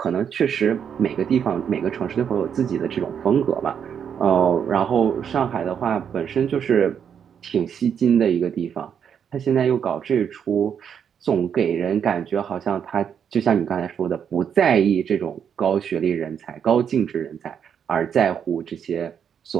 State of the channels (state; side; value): quieter; left; 7.9 dB